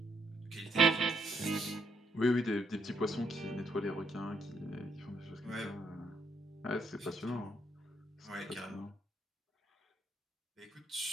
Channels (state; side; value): normal; both; correlation 0.73